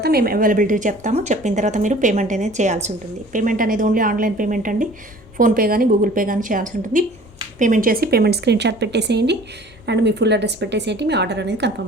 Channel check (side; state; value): both; normal; correlation 0.48